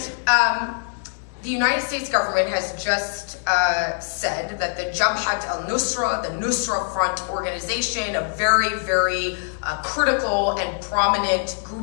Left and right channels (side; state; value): right; silent; digital silence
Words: the United States government has just said that the Jabhat al-Nusra, the Nusra Front organization, a very, very critical and prominent